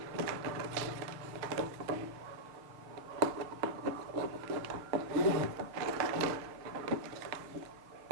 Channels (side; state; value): left; late; 6.5 ms